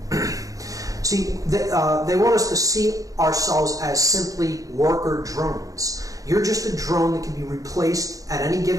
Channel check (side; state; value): left; late; 0.17 ms